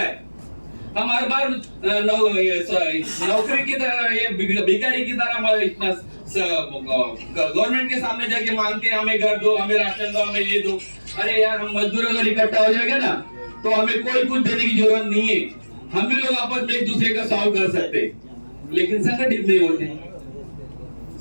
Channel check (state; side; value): inverted; both; correlation -1.00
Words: है। हम हर बार नौकरी की तरह, ये भिखारी की तरह इतना गवर्नमेंट के सामने जाके मांगते हैं हमें घर दो, हमें राशन दो, हमें ये दो। अरे यार, हम मजदूर अगर इकट्ठा हो जाएगा ना तो हमें कोई कुछ देने की जरूरत नहीं है, हम भी लोग आपस में एक दूसरे का सॉल्व कर सकते हैं। लेकिन संगठित नहीं होते।